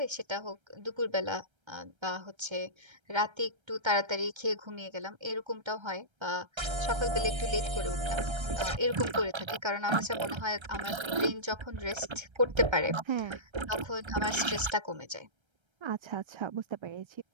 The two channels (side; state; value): left; late; 1.3 ms